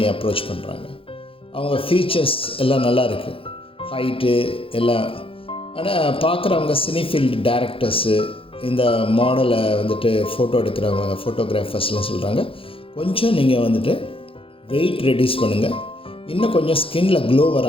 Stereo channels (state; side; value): late; right; 0.27 ms